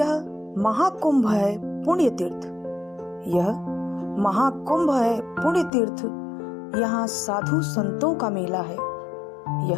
महाकुंभ है पुण्य तीर्थ। यह महाकुंभ है पुण्य तीर्थ। यहाँ साधु संतों का मेला है।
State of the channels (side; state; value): right; drops out; at 5.7 s